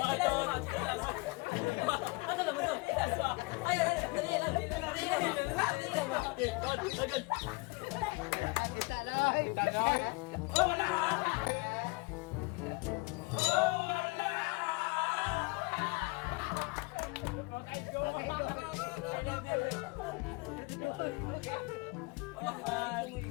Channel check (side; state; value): right; quieter; 26.7 dB